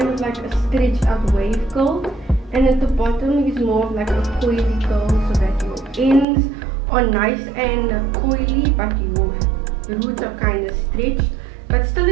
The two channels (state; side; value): drops out; left; at 6.2 s